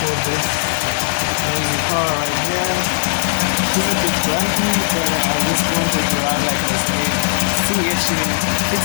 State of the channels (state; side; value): silent; right; digital silence